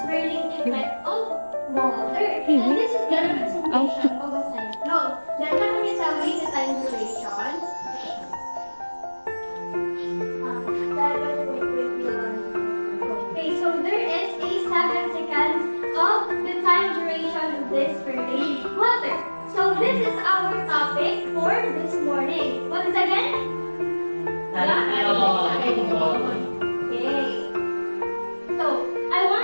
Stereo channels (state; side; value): inverted; both; correlation -1.00